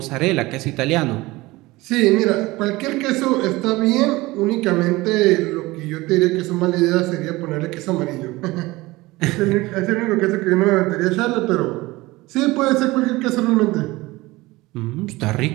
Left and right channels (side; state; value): left; quieter; 20.4 dB